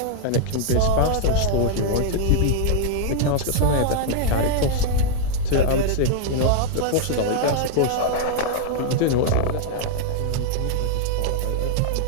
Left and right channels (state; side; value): different; both; correlation -0.01